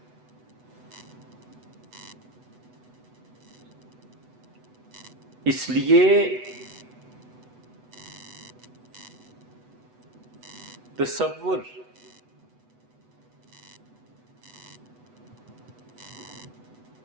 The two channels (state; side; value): late; left; 8.0 ms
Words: اس لیے تصور